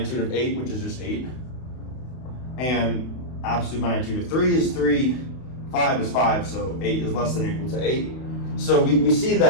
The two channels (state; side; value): late; right; 32 ms